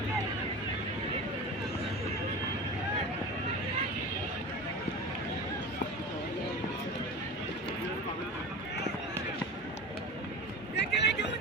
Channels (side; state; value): both; normal; correlation 0.31